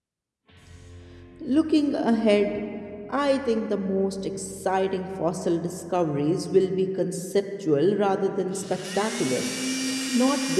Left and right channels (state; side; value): identical; both; correlation 1.00